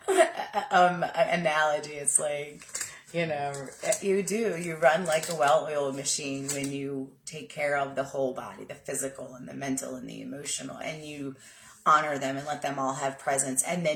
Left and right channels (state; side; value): identical; both; correlation 1.00